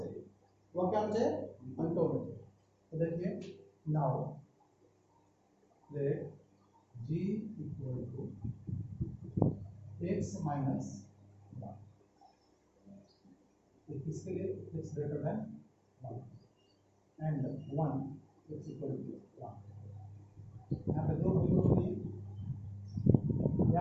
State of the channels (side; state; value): both; identical; correlation 1.00